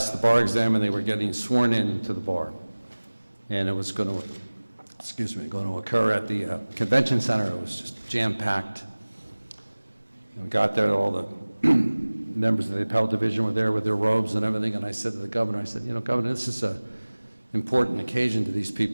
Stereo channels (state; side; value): inverted; both; correlation -1.00